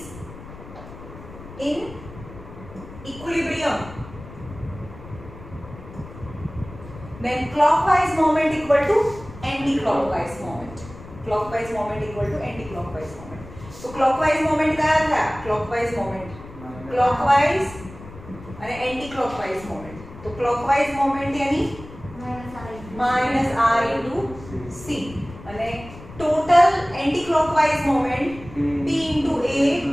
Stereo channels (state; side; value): noise; left; rumble, 16 dB below the sound